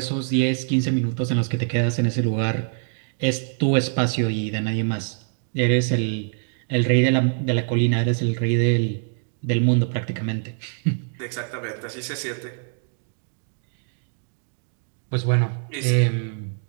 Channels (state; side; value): silent; left; digital silence